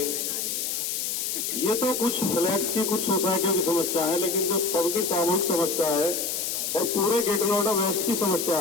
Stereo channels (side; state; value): left; noise; hiss, 2 dB below the sound